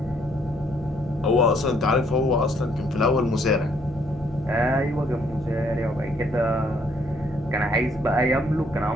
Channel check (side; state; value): both; normal; correlation 0.67